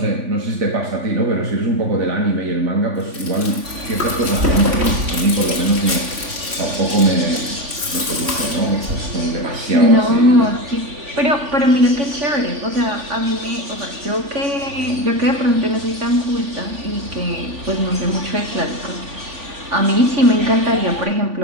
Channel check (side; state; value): left; late; 3.5 ms